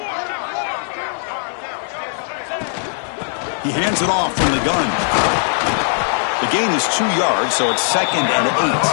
He hands it off from the gun. The gain is 2 yards, so it's 2nd and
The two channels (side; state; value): right; silent; 67 dB below the other